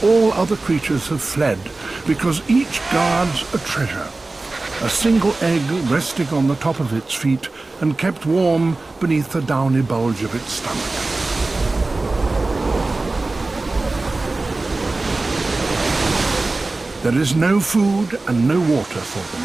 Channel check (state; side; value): quieter; left; 3.3 dB